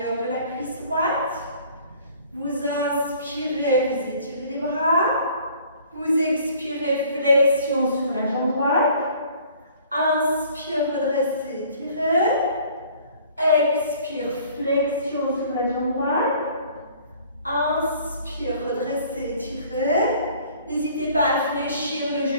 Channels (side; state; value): both; inverted; correlation -0.53